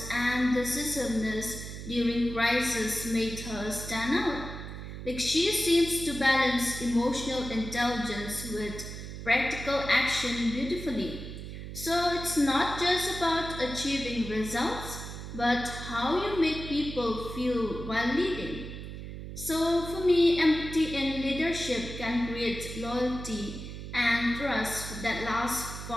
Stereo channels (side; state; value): right; noise; hum, 9 dB below the sound